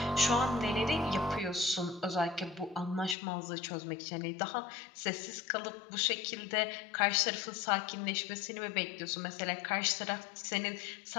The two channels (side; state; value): right; drops out; at 3.2 s